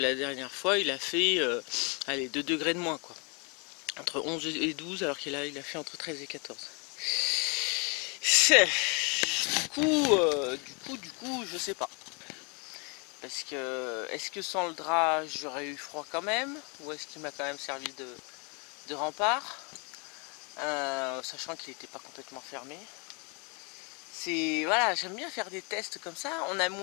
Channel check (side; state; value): right; quieter; 33.5 dB